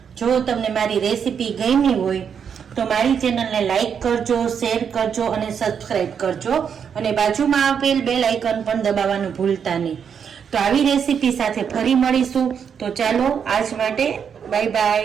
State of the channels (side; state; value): left; quieter; 7.3 dB